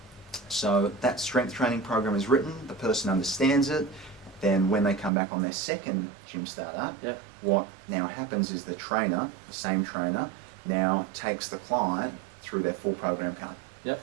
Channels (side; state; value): left; drops out; at 5.1 s